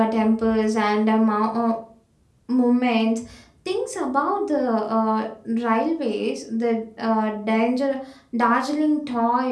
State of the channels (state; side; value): identical; both; correlation 1.00